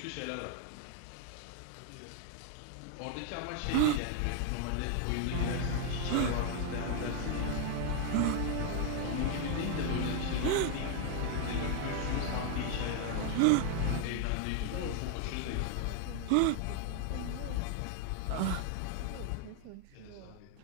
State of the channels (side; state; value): both; different; correlation 0.00